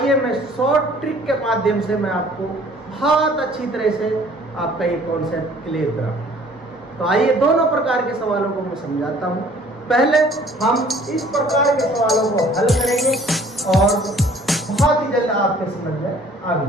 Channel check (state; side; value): normal; both; correlation 0.54